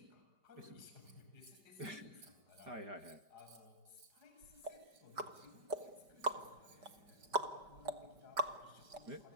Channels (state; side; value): late; left; 5.2 ms